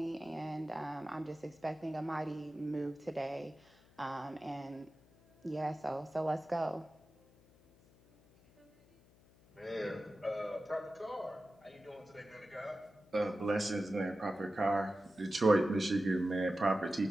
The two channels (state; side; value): noise; left; hum, 27 dB below the sound